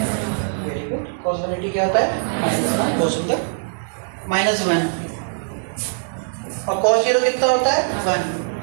वेरी गुड, कॉस 180 क्या होता है, बहुत सुंदर, -1। और cos 0 कितना होता है, 1।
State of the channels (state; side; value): silent; left; digital silence